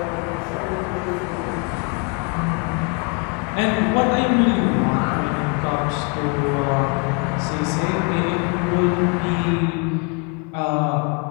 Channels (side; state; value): right; quieter; 33.9 dB